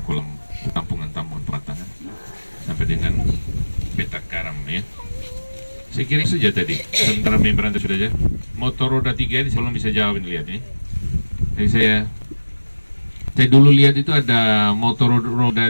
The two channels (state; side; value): inverted; both; correlation -1.00